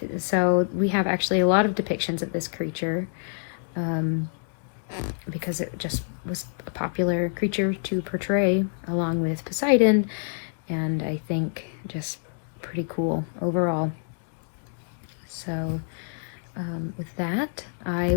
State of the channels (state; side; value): silent; right; digital silence